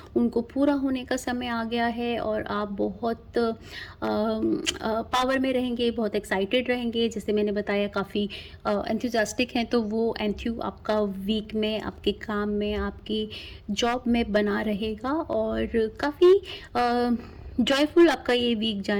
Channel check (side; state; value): both; identical; correlation 1.00